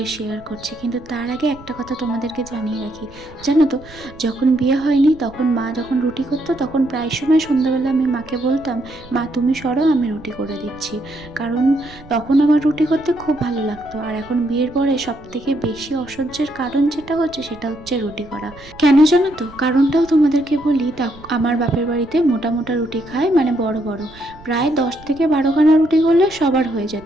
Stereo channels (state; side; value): noise; right; rumble, 21 dB below the sound